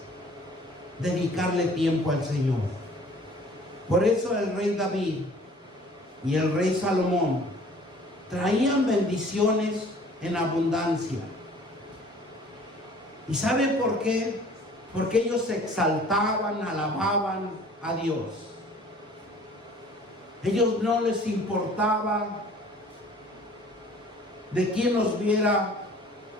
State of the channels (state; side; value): normal; both; correlation 0.51